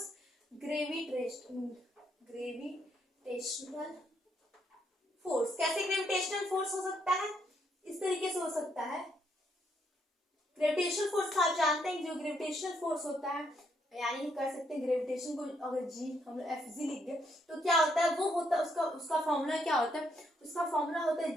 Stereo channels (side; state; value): both; normal; correlation 0.74